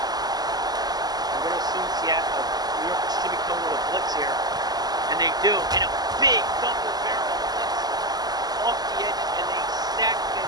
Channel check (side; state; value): left; late; 0.20 ms